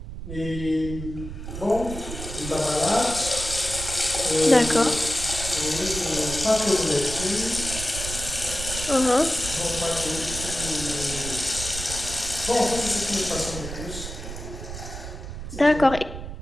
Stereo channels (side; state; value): right; noise; rumble, 9 dB below the sound